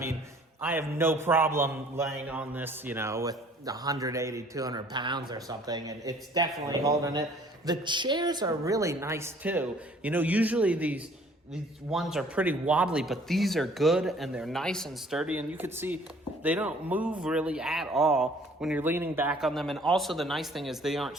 I have no problem laying on this, with 180, 200 pounds or something, and it's definitely holding it. The chairs are really nice too. Usually these ones are pretty wobbly, but these are good and they're nice and sturdy, and you can see they don't move really at all when you're leaning back on them. And also the nice thing is they aren't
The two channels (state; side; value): normal; both; correlation 0.55